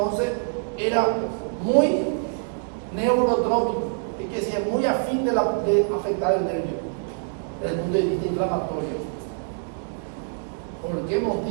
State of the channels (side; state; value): left; silent; 62 dB below the other